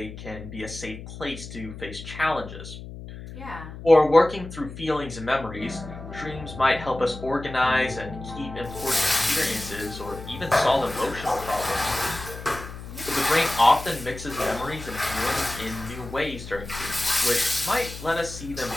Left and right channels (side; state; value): left; noise; hum, 12 dB below the sound